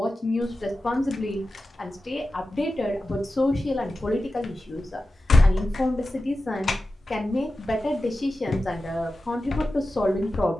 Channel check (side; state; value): both; normal; correlation 0.93